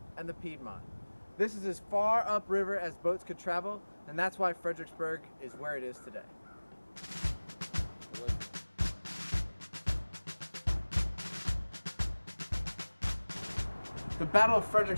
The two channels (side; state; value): both; inverted; correlation -1.00